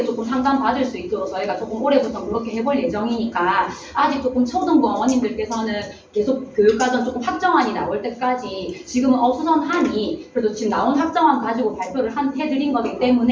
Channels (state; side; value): identical; both; correlation 1.00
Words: 조금 상담 받을 수 있도록 저희가 조금 올해부터 그렇게 해볼 예정이니까, 아직 조금 초등부 어머님들께서는 계속 교육과정 조금 확정안이 나올 때까지 지금은 어수선하니 그래도 지금 나온 확정안 가지고 발표를 해드린 거기